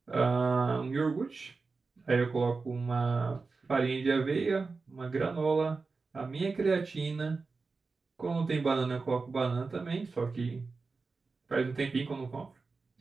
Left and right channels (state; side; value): quieter; left; 4.2 dB